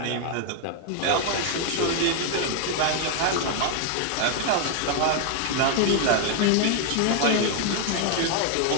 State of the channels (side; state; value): both; different; correlation 0.00